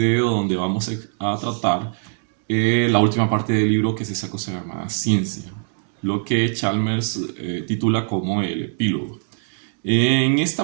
donde vamos a tratar la última parte del libro, que es esa cosa llamada ciencia, lo que Chalmers titula como el epílogo. En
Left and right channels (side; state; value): left; silent; digital silence